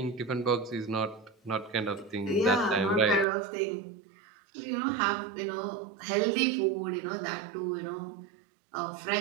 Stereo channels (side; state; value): left; drops out; at 3.2 s